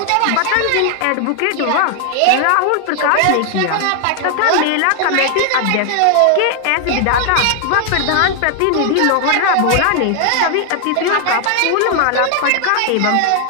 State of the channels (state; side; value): different; both; correlation 0.00